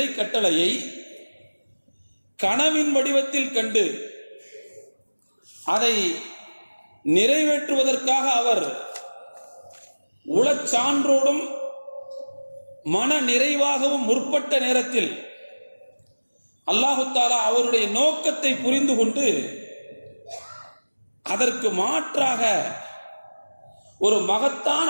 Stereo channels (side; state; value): both; inverted; correlation -1.00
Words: கட்டளையை கனவின் வடிவத்தில் கண்டு அதை நிறைவேற்றுவதற்காக அவர் உளச்சான்றோடும் மன நிறைவாகவும் முற்பட்ட நேரத்தில் அல்லாஹு தஆலா அவருடைய நோக்கத்தை புரிந்து கொண்டு அதற்கு மாற்றாக ஒரு மகத்தான